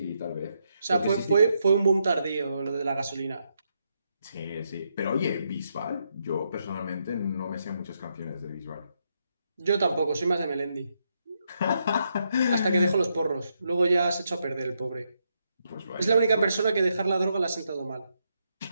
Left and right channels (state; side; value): inverted; both; correlation -0.80